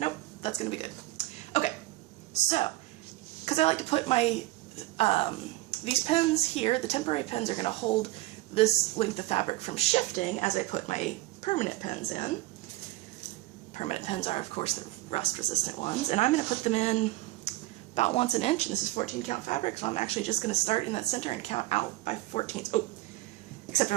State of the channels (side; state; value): left; quieter; 18.2 dB